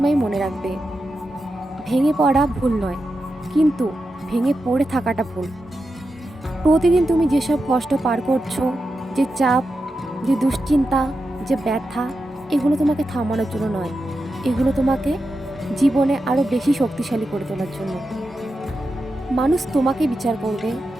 মনে রাখবে, ভেঙে পড়া ভুল নয়, কিন্তু ভেঙে পড়ে থাকাটা ভুল। প্রতিদিন তুমি যেসব কষ্ট পার করছো, যে চাপ, যে দুশ্চিন্তা, যে ব্যথা, এগুলো তোমাকে থামানোর জন্য নয়, এগুলো তোমাকে জীবনে আরও বেশি শক্তিশালী করে তোলার জন্য। মানুষ তোমাকে বিচার করবে,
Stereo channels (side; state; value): both; normal; correlation 0.89